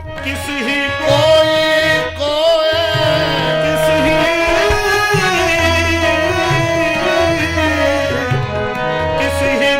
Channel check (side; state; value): both; identical; correlation 1.00